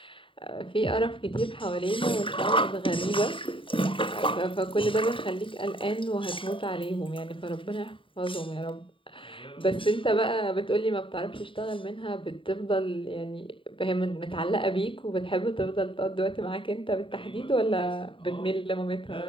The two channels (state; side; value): late; right; 0.25 ms